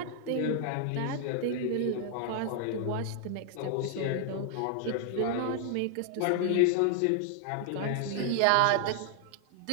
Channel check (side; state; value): both; different; correlation 0.00